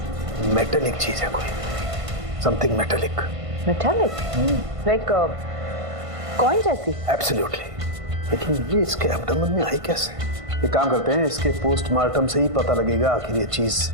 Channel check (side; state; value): left; late; 1.5 ms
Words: मेटेलिक चीज है कोई, something metallic. Metallic like coin जैसी? एब्सोल्युटली। लेकिन ये इसके एब्डोमेन में आई कैसे? एक काम करते हैं, इसके पोस्टमार्टम से ही पता लगेगा आखिर ये चीज